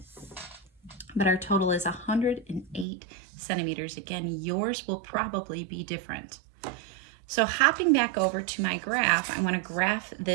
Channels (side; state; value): left; drops out; at 2.9 s